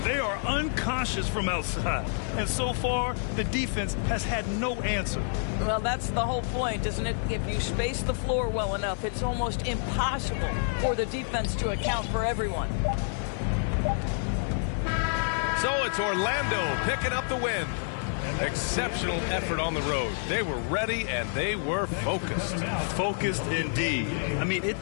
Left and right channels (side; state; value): right; silent; digital silence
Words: They are unconscious from outside. And so far, the defense has had no answer. Well, that's the whole point, isn't it? If you space the floor well enough, it's almost impossible for the defense to account for everyone. So it's Orlando picking up the win. Exceptional effort on the road. They were ready and they were focused. Focused indeed. I mean, it